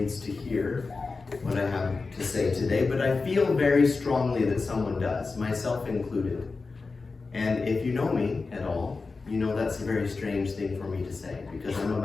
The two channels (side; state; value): right; quieter; 4.1 dB